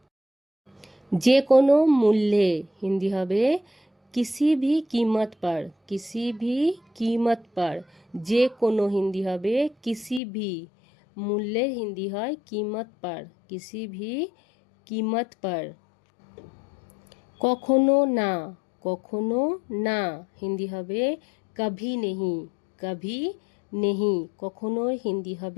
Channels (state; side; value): drops out; right; at 10.2 s